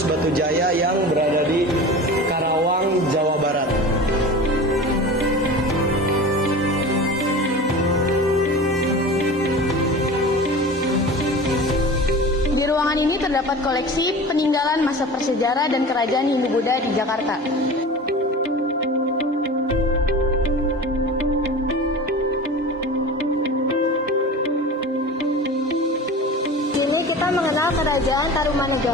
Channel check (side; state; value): both; normal; correlation 0.34